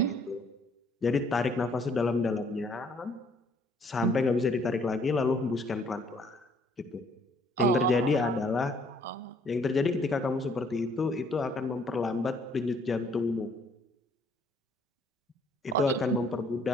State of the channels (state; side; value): normal; both; correlation 0.64